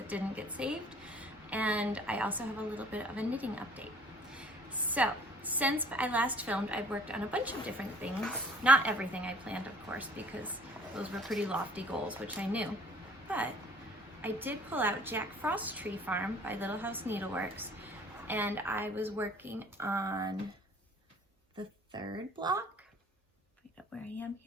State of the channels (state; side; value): normal; both; correlation 0.53